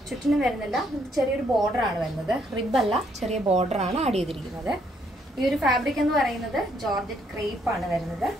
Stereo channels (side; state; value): both; normal; correlation 0.71